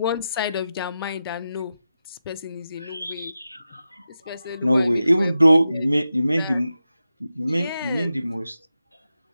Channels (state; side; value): inverted; both; correlation -0.90